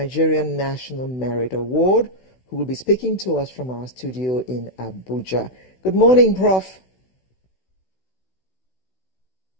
National Merit Award, who will be speaking to us from our studio in Abuja. Good morning, Prof.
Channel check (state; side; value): late; right; 16 ms